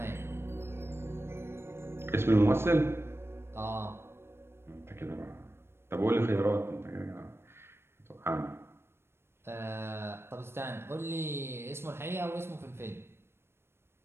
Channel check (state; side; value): late; left; 0.12 ms